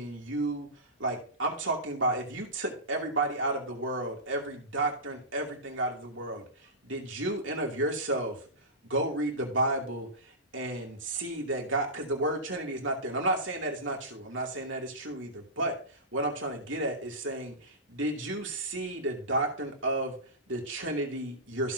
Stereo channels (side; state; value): both; normal; correlation -0.18